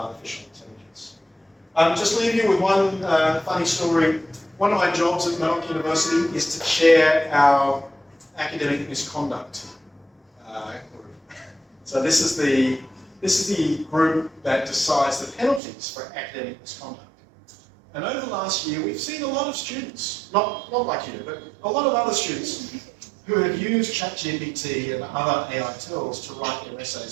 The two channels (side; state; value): left; drops out; at 15.6 s